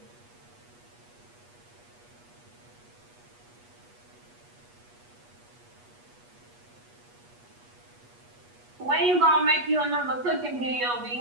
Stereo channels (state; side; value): late; left; 8.3 ms